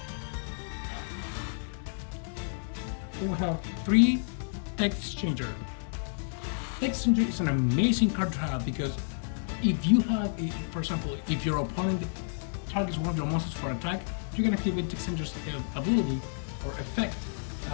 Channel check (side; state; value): right; silent; digital silence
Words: Then we have 3 Text Exchanger. Text Exchanger is an amazing card to have because if you have, for example, if your opponent targets one of your monsters for attack, you can activate Text Exchanger's ability or effect,